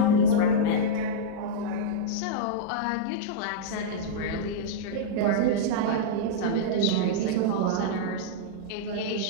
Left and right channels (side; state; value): both; different; correlation -0.03